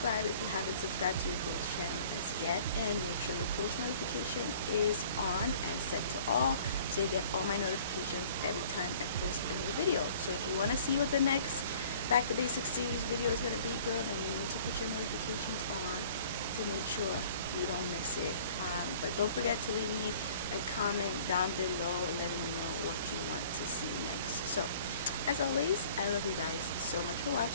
if you haven't subscribed to your girl's channel as yet, and make sure your post notification is on and set to all so you get all my notifications every time I post a new video. So if you want to see what the next Back to Basics series video is going to be, girl, then you need to put your notifications on to make sure you don't miss it. But don't forget to leave me a comment down below letting me know what you want to see next. So as always, I love you guys so much for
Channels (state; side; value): inverted; both; correlation -0.51